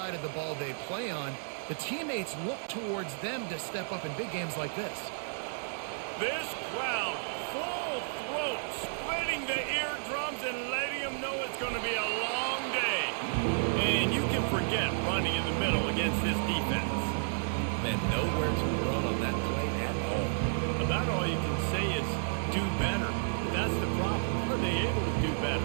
of the ball they play on, the teammates look towards them to step up in big games like this. This crowd, full throat, splitting the eardrums and letting them know it's going to be a long day. And you can forget running in the middle against this defense. Man, nowhere to run on that play at all. About all you can say is do better. That's the problem. Are they able to do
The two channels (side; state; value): left; silent; digital silence